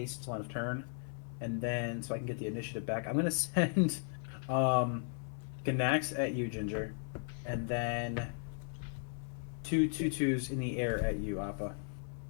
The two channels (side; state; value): right; silent; 54 dB below the other